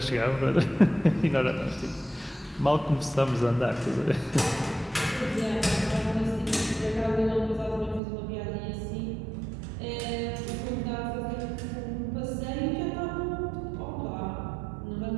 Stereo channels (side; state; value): left; drops out; at 8.0 s